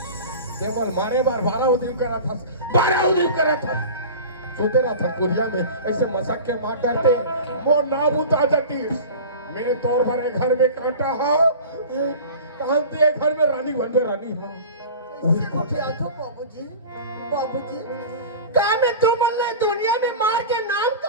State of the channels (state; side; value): inverted; both; correlation -0.35